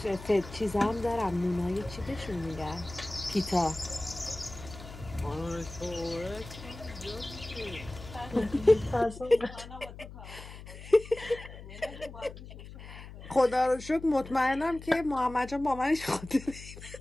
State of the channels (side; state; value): left; noise; hum, 14 dB below the sound